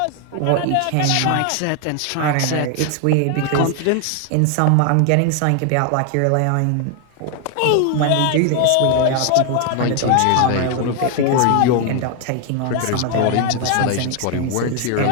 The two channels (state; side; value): different; both; correlation 0.00